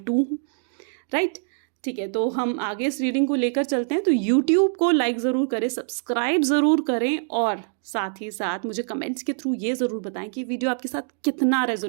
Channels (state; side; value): silent; left; 62 dB below the other